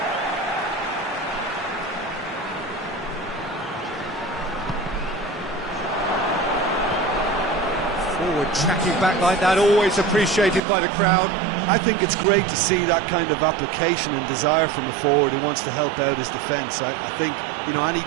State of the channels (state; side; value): drops out; left; at 10.6 s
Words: Forward tracking back like that, always appreciated by the crowd. I think it's great to see that kind of application and desire from a forward who wants to help out his defence. I think, you know, any